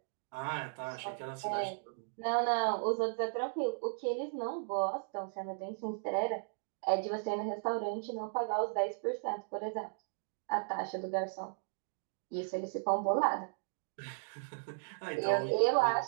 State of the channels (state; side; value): silent; left; digital silence